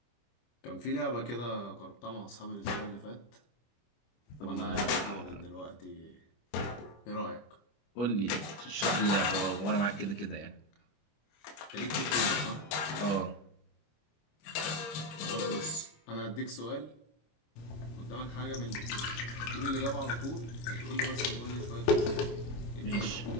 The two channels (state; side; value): late; right; 26 ms